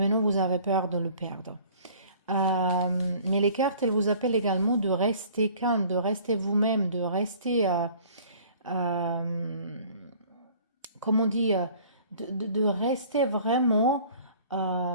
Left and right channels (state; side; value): inverted; both; correlation -0.51